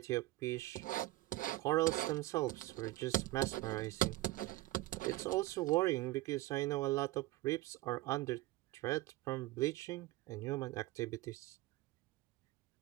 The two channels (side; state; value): left; quieter; 18.5 dB